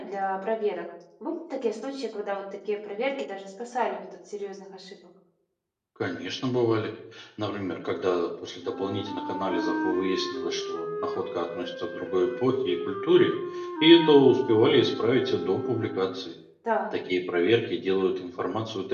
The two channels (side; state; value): both; identical; correlation 1.00